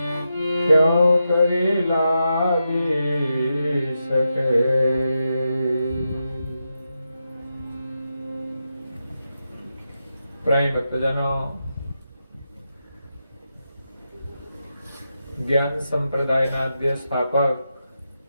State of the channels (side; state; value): both; inverted; correlation -0.87